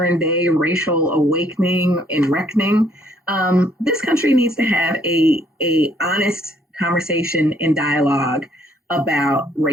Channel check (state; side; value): normal; both; correlation 0.66